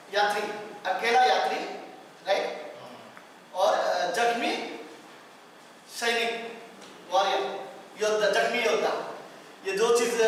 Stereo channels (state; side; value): identical; both; correlation 1.00